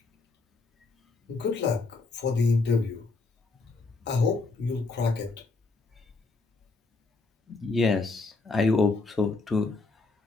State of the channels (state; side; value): quieter; right; 3.8 dB